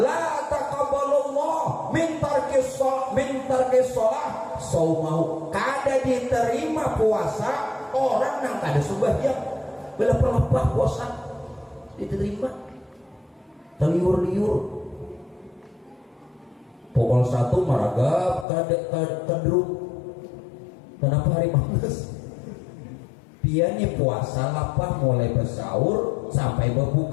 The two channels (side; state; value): right; drops out; at 18.4 s